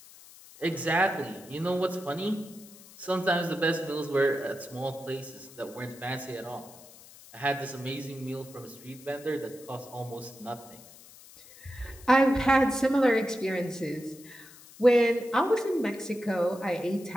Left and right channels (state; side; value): noise; left; hiss, 21 dB below the sound